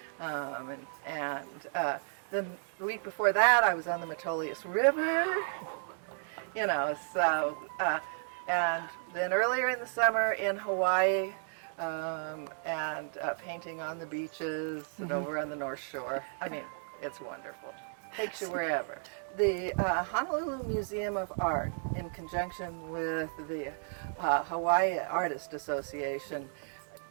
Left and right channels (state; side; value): silent; left; digital silence